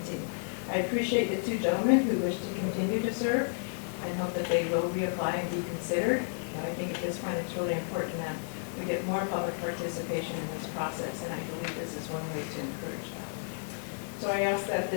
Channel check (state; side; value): silent; right; digital silence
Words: I appreciate the two gentlemen who wish to continue to serve and hope that they will reapply and be considered. But I think at this point it's really important that we get more public participation in this process, and I believe this is one way to encourage that. So I ask that